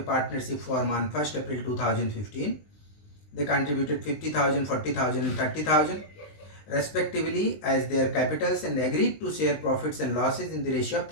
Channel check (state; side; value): late; right; 19 ms